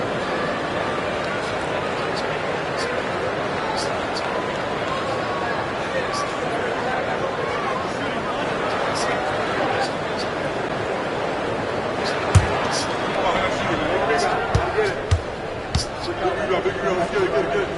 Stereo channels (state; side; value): identical; both; correlation 1.00